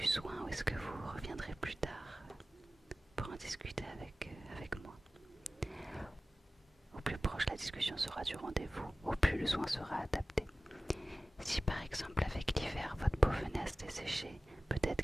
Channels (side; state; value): both; normal; correlation 0.96